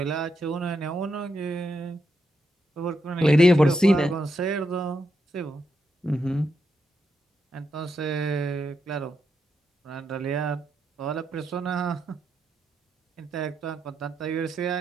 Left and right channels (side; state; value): both; normal; correlation 0.83